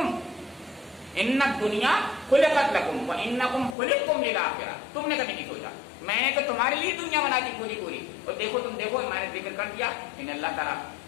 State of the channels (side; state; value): right; drops out; at 3.8 s